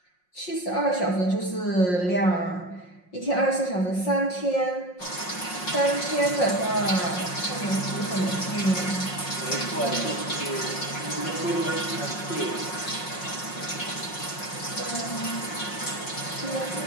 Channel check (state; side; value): late; right; 5.5 ms